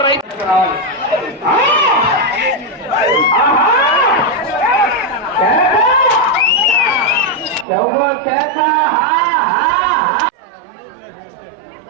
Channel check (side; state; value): left; drops out; at 7.7 s